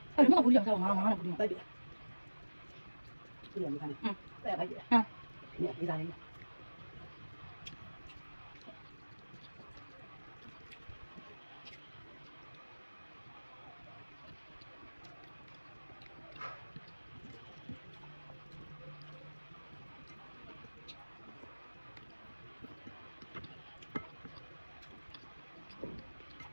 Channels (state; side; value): inverted; both; correlation -1.00